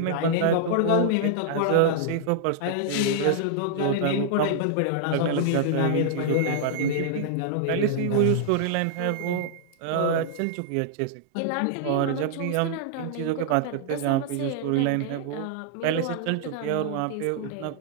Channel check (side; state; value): both; different; correlation -0.01